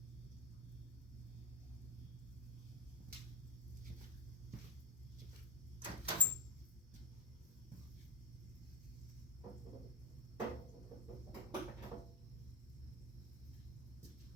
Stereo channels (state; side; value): normal; both; correlation 0.21